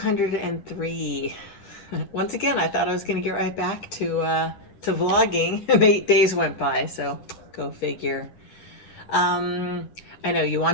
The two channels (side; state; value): right; late; 9.4 ms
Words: Once again, I thought I was going to get right back to vlogging, and 8 days went by, so go figure. Um, I know you